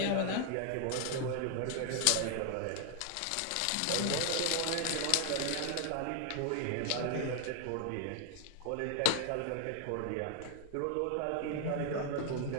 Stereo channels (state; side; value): different; both; correlation 0.00